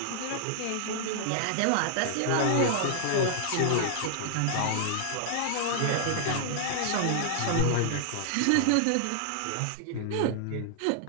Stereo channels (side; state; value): both; different; correlation -0.01